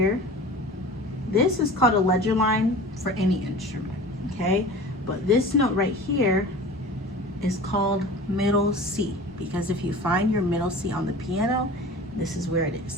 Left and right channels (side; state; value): both; normal; correlation 0.38